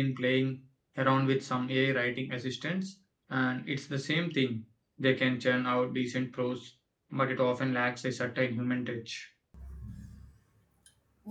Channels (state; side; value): identical; both; correlation 1.00